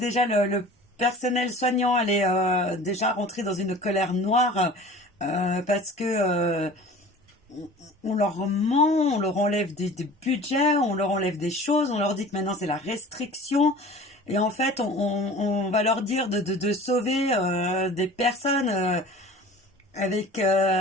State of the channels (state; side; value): normal; both; correlation 0.43